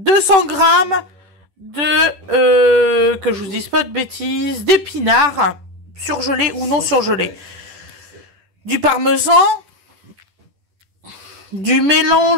grammes de, que je vous dise pas de bêtises, d'épinards, surgelés ou non surgelés. Du parmesan, du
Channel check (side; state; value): left; late; 10 ms